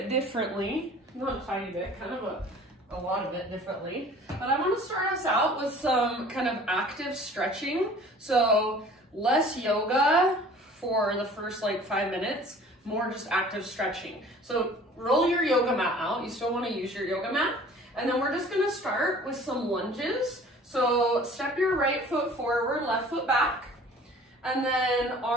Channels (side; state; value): both; normal; correlation 0.48